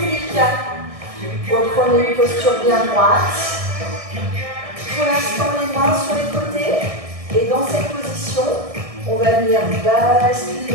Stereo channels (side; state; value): left; late; 1.6 ms